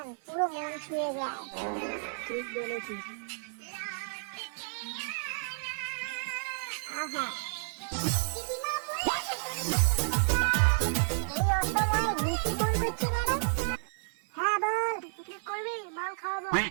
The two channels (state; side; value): silent; left; 57 dB below the other